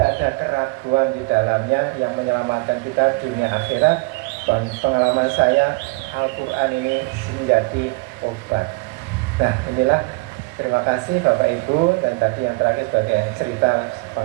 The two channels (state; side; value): quieter; left; 27.1 dB